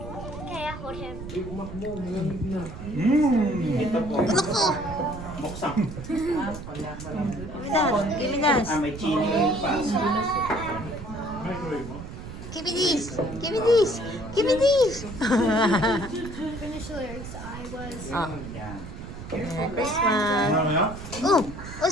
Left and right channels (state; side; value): noise; right; rumble, 11 dB below the sound